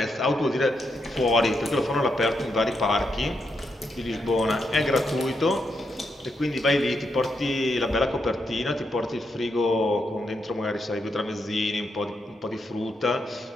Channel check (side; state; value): both; normal; correlation 0.81